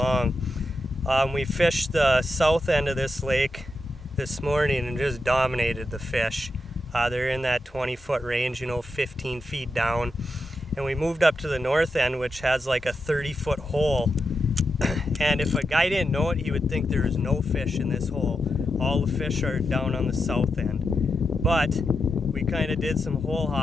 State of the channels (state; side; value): normal; both; correlation 0.87